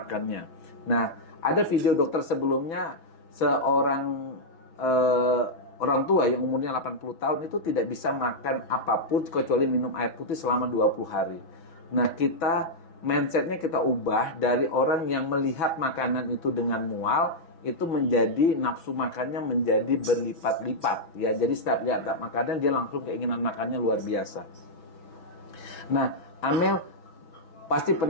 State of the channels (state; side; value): late; right; 6.1 ms